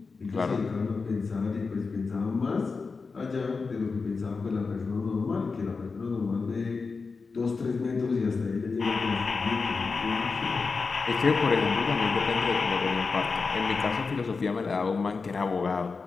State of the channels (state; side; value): quieter; right; 4.6 dB